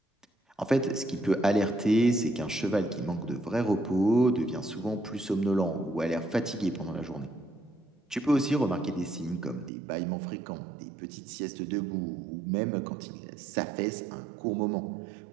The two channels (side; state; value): left; drops out; at 9.7 s